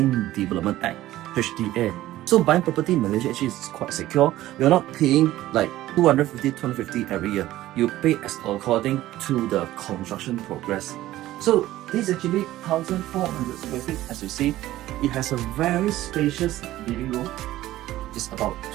Development Act, HDA. So buying property in Malaysia actually is quite secure. You're not paying like 250 every year. You pay as according to the construction progress. So this is actually 1400 square feet. As you see, it has a very spacious living room. It's about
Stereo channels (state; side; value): quieter; left; 15.2 dB